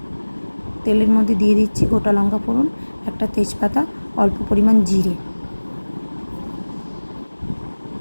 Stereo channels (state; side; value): inverted; both; correlation -1.00